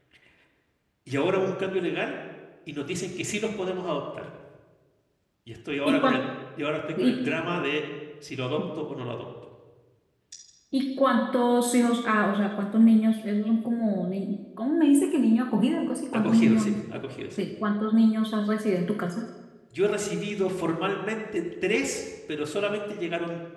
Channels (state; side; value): identical; both; correlation 1.00